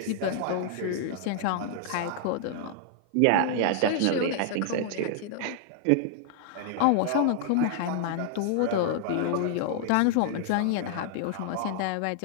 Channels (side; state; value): both; different; correlation -0.01